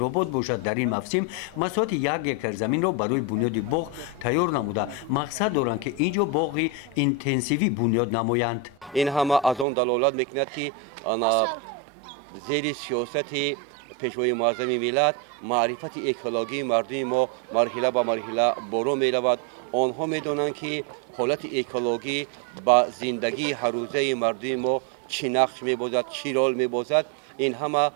باشد در این موسم مساحت 1 اکر زمین را برای بنیاد باغ تیار نموده مقصد دارند که اینجا باغی اینتنسیوی بنیاد نمایند. این همه از آن دلالت میکند که زیر سیاست پیشوای معظم ملت معرفت اکولوژی مردم ما مرحله به مرحله برو میرود. آنها میدانند که حالت اکولوژی با زندگی هر روزه مردم ما چی نقش میبازد، چی رول میبازد. این همه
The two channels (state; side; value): drops out; left; at 9.7 s